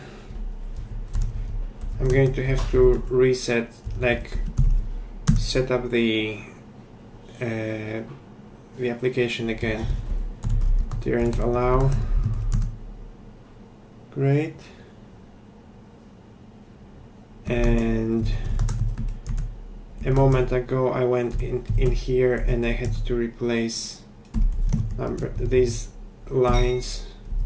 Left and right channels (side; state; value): both; identical; correlation 1.00